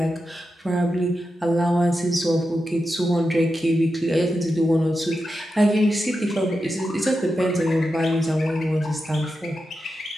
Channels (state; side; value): normal; both; correlation 0.89